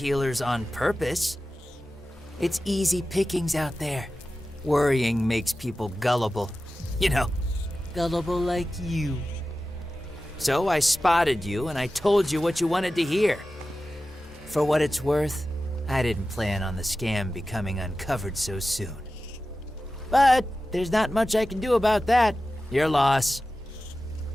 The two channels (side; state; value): both; normal; correlation 0.94